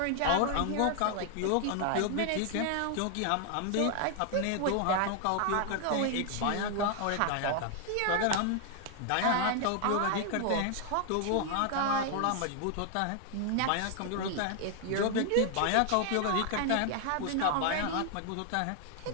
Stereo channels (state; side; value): different; both; correlation 0.00